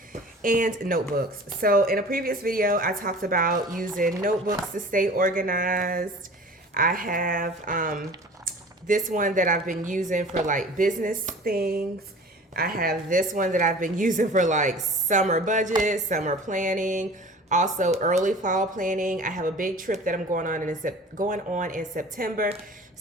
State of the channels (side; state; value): both; normal; correlation 0.42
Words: and notebooks. So in a previous video, I talked about using notebooks to stay organized. I have this one that I've been using for like business things. I have this one that I've been using for like summer budget, summer planning, also early fall planning. I have a big trip that I'm going on in September.